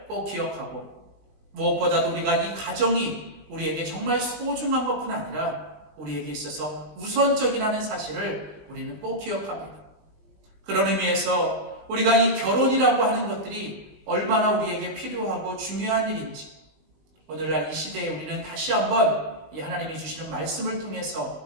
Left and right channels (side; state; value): left; late; 19 ms